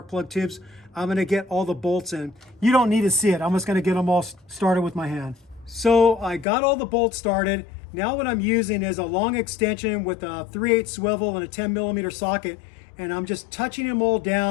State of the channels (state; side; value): drops out; right; at 6.5 s